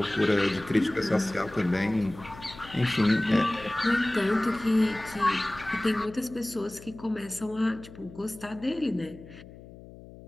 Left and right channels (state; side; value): noise; left; hum, 18 dB below the sound